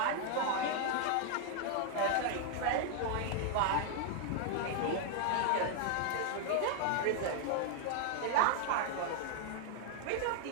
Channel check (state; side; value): different; both; correlation 0.00